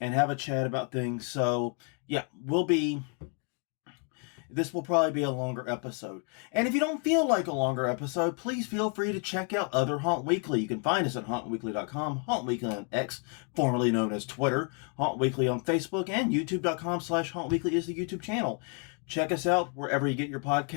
have a chat about things. So yeah, this will probably be a longer episode. And if you don't feel like a longer episode, please feel free to check out other Haunt Weekly. You can find us at hauntweekly.com, Haunt Weekly on X, formerly known as Twitter, Haunt Weekly on Facebook, and youtube.com/Haunt Weekly is the YouTube channel. Check us out wherever you get your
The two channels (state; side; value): quieter; right; 38.7 dB